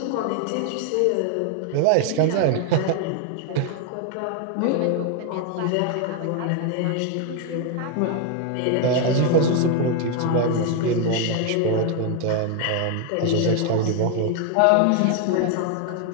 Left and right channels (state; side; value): different; both; correlation 0.01